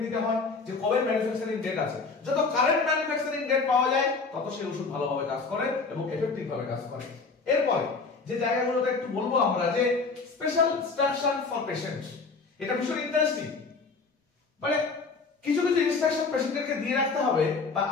নিতে হয় যে কবে ম্যানুফ্যাকচারিং ডেট আছে। যত কারেন্ট ম্যানুফ্যাকচারিং ডেট পাওয়া যায় তত সেই ওষুধ ভালোভাবে কাজ করে এবং এফেক্টিভ ভাবে কাজ করে। এরপরে যে জায়গাগুলোতে একটু বলবো আমরা যে স্পেশাল ইনস্ট্রাকশন ফর পেশেন্ট, এটা ভীষণ ইন্টারেস্টিং। মানে কিছু ইনস্ট্রাকশন পেশেন্টকে দিয়ে রাখতে হবে বা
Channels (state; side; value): quieter; right; 4.4 dB